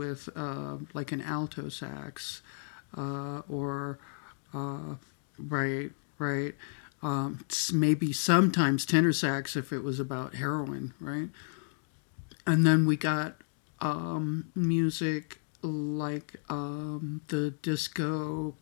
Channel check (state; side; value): silent; right; digital silence